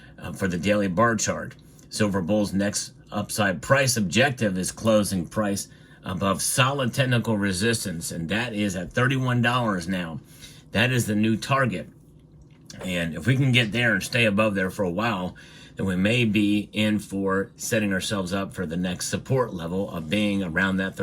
for the daily bar chart. Silver Bull's next upside price objective is closing price above solid technical resistance, and that is at $31 now. That is the new target. And if we can get there and stay above there for a while, then we may be in for setting ourselves up for the next support level of being around that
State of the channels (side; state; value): both; identical; correlation 1.00